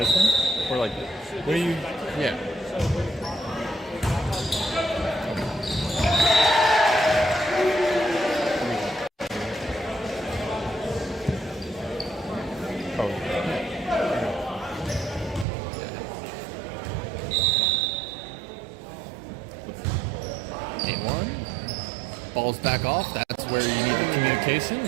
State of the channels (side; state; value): left; drops out; at 15.5 s